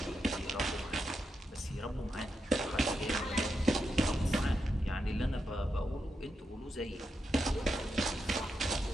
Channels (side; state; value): both; normal; correlation 0.85